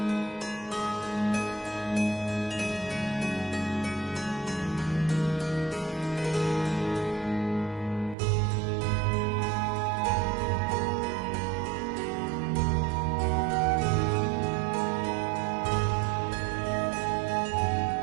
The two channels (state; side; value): drops out; left; at 8.2 s